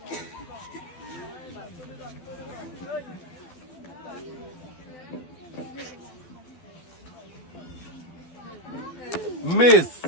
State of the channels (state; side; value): late; right; 12 ms